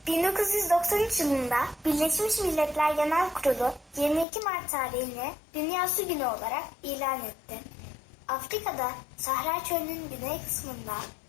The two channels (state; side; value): drops out; right; at 4.2 s